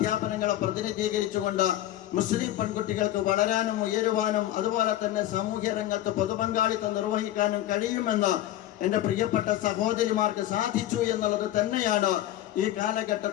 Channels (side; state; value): right; quieter; 13.5 dB